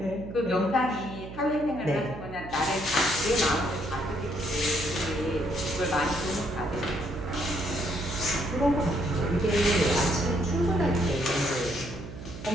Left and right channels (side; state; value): right; noise; hum, 12 dB below the sound